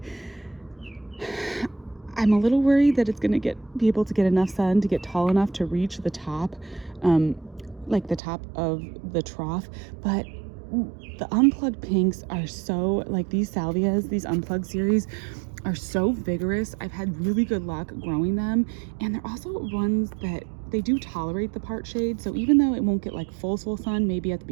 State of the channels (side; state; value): left; drops out; at 8.2 s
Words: I'm a little worried that it's gonna be able to get enough sun to get tall enough to reach the top, like the top of the trough, but the unplugged pinks are so, like these salvias, these unplugged series are so vigorous. I've had really good luck growing them, and they're also ones that they do tolerate the part shade. So even though it won't get like full sun maybe at the